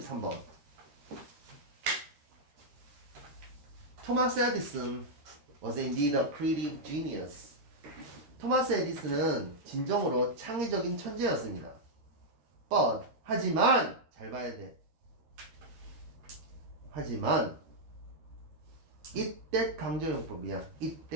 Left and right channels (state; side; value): late; left; 13 ms